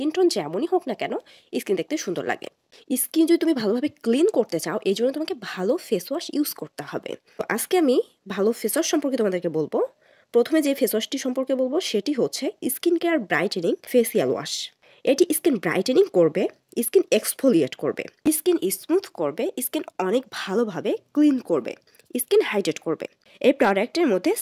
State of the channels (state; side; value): identical; both; correlation 1.00